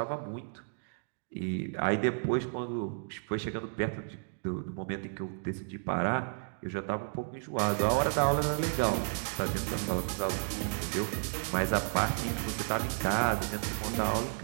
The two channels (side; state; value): left; silent; digital silence